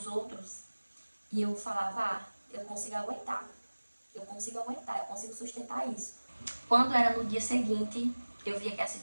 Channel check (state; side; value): inverted; both; correlation -1.00